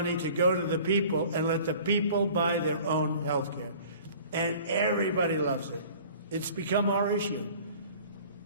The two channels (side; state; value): both; inverted; correlation -0.48